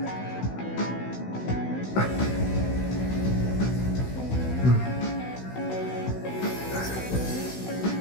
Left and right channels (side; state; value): right; late; 16 ms